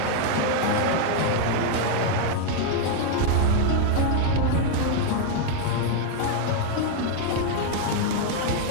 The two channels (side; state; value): both; different; correlation 0.00